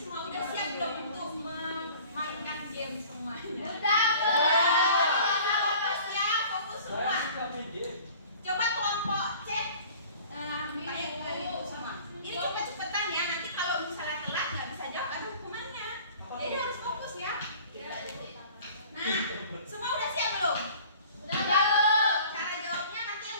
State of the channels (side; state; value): both; inverted; correlation -0.47